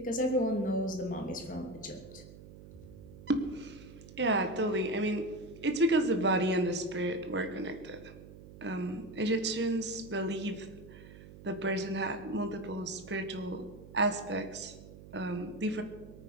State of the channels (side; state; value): right; noise; hum, 17 dB below the sound